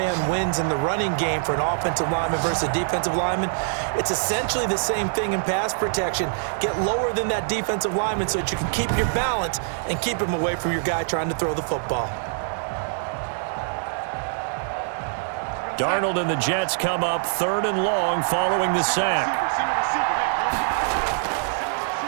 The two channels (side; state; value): left; silent; digital silence